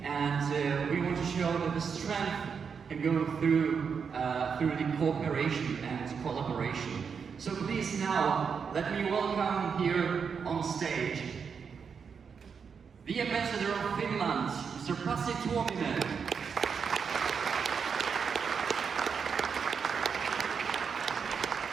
and we want to show that the strength can go through the cooperation and collaboration. So please now let me welcome here on stage the Ambassador of Finland, Mr. Pasi Tuominen.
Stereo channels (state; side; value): quieter; left; 6.2 dB